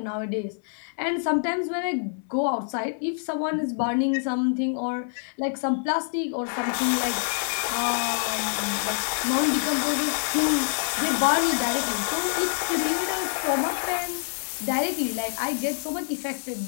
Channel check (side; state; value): right; silent; digital silence